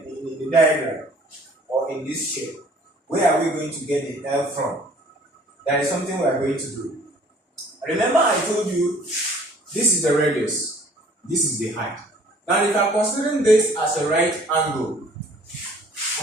diagram or in this shape. Where are we going to get the L from? That is something we are going to do. Remember I told you this is the radius, this is the height. Now if I'm considering this as a right angle,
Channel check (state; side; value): normal; both; correlation 0.54